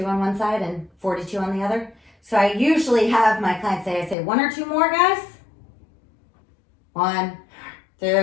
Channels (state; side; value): drops out; right; at 4.2 s